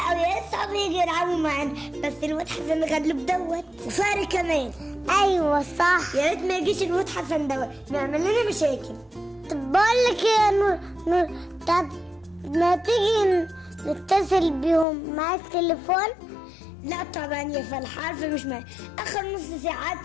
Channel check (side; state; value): right; drops out; at 14.9 s